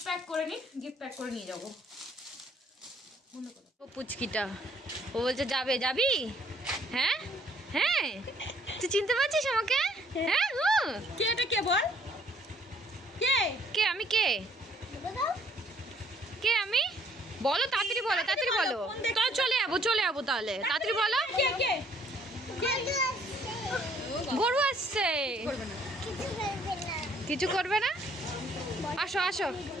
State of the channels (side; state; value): both; normal; correlation 0.63